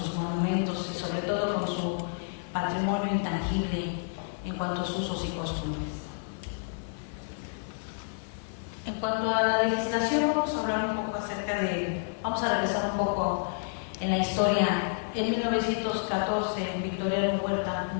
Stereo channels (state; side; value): silent; right; 58 dB below the other